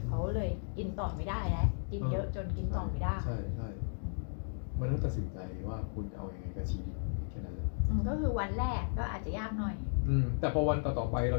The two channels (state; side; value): silent; right; digital silence